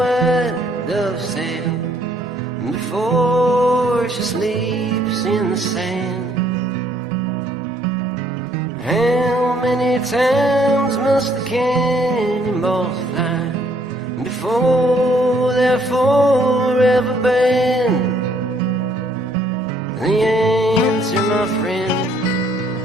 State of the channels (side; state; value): both; normal; correlation 0.65